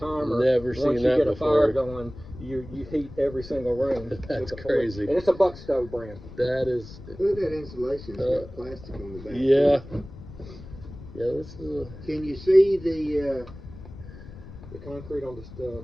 Never seen once you that get a before. fire going, you heat every single room. That's with the crazy. And it's a Buck Stove brand. That is. Look at that insulation. It's got plastic on the back. Yeah. Yeah, this is. Can you see the concrete on the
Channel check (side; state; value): left; noise; rumble, 15 dB below the sound